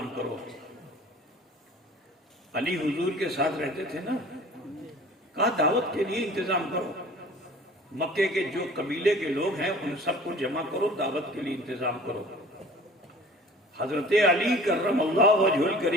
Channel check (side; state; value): both; normal; correlation 0.46